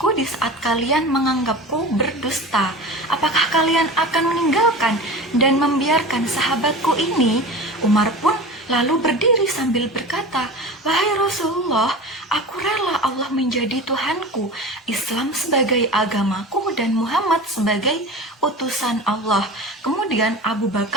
di saat kalian menganggapku berdusta. Apakah kalian akan meninggalkan dan membiarkan sahabatku ini? Umar pun lalu berdiri sambil berkata, "Wahai Rasulullah, aku rela Allah menjadi Tuhanku, Islam sebagai agamaku, dan Muhammad sebagai utusan Allah." Kemudian Abu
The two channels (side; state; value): both; normal; correlation 0.32